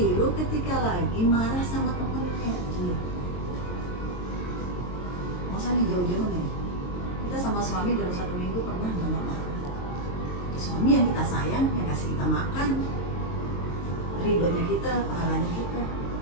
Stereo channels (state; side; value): late; right; 22 ms